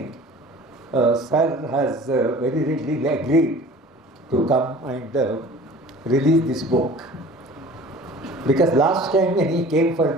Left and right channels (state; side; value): normal; both; correlation 0.44